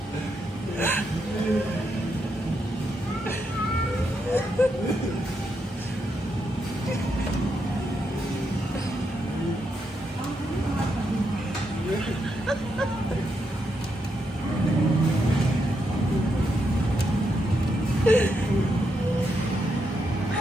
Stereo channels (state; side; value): normal; both; correlation 0.81